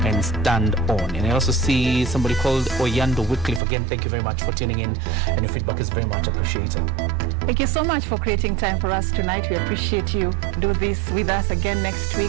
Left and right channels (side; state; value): left; drops out; at 3.6 s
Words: and stand on. And I also see somebody called Oyando Wycliffe. Again, thank you very much for tuning in, and your feedback is very much appreciated. Thank you so much for creating time for us tonight. We appreciate you. Do this with us again next